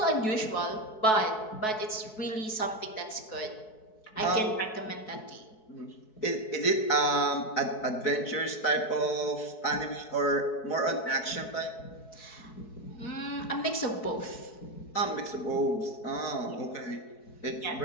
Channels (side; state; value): right; late; 4.6 ms